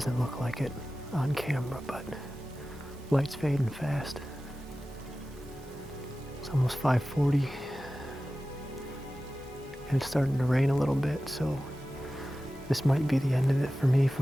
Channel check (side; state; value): both; normal; correlation 0.95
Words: look like it on camera, but light's fading fast. It's almost 5:40, and it's starting to rain a little bit, so this might be the end of it for me